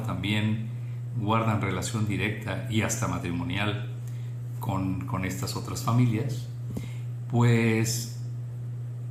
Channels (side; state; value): both; identical; correlation 1.00